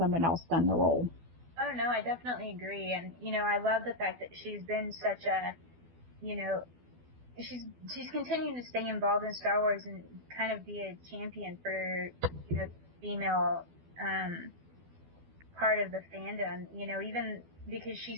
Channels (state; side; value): late; left; 12 ms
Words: else done the role. Oh, no, I definitely agree. And, I love the fact that she's been such a, she's continuing to stay involved in Star Wars and kind of be a champion for, the female part of the fandom, even because